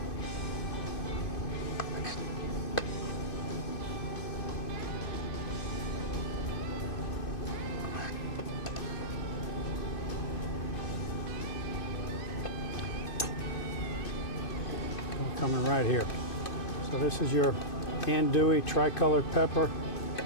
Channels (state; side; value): late; right; 2.5 ms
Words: Coming right here. So this is your andouille tricolored pepper